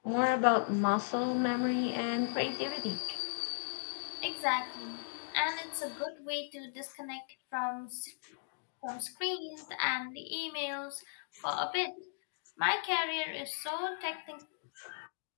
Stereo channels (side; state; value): right; silent; digital silence